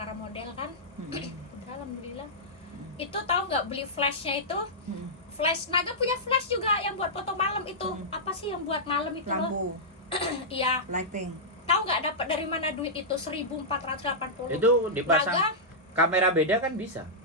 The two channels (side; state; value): both; normal; correlation -0.11